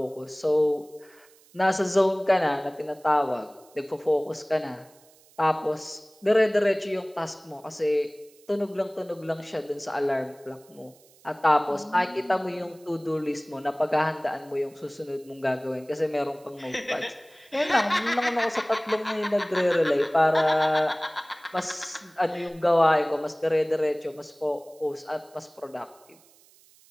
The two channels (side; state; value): right; noise; hiss, 28 dB below the sound